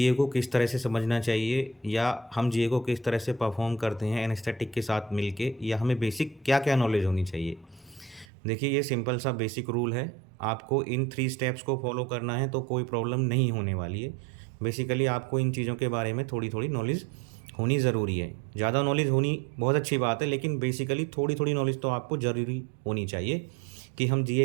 को किस तरह से समझना चाहिए, या हम जीए को किस तरह से परफॉर्म करते हैं एनेस्थेटिक के साथ मिलके, या हमें बेसिक क्या क्या नॉलेज होनी चाहिए। देखिए, ये सिंपल सा बेसिक रूल है। आपको इन 3 स्टेप्स को फॉलो करना है तो कोई प्रॉब्लम नहीं होने वाली है। बेसिकली आपको इन चीज़ों के बारे में थोड़ी थोड़ी नॉलेज होनी ज़रूरी है। ज़्यादा नॉलेज होनी बहुत अच्छी बात है, लेकिन बेसिकली थोड़ी थोड़ी नॉलेज तो आपको ज़रूरी होनी चाहिए कि हम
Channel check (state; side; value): drops out; left; at 8.2 s